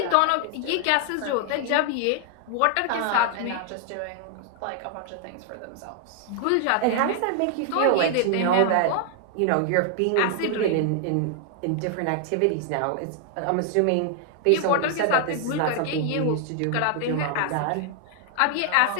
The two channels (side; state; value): both; different; correlation 0.00